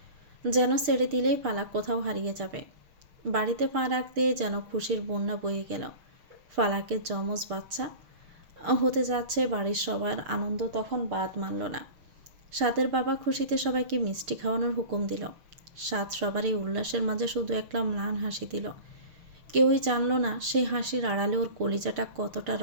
যেন ছেড়ে দিলেই পালাক কোথাও হারিয়ে যাবে। বাড়িতে পা রাখতে যেন খুশির বন্যা বয়ে গেল। ফালাকের যমজ বাচ্চা হতে যাচ্ছে, বাড়ির সবার আনন্দ তখন বাদ মানল না। সাদের বাবা খুশিতে সবাইকে মিষ্টি খাওয়ানোর হুকুম দিল। সাদ সবার এই উল্লাসের মাঝে শুধু একটা ম্লান হাসি দিল। কেউই জানল না সেই হাসির আড়ালে ওর কলিজাটা কতটা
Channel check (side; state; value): left; late; 6.7 ms